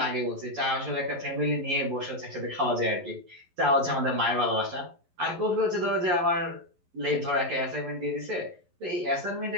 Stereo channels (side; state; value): left; late; 11 ms